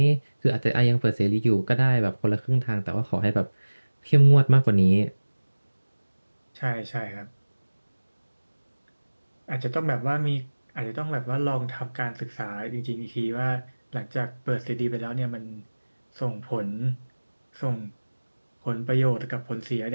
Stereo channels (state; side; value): inverted; both; correlation -1.00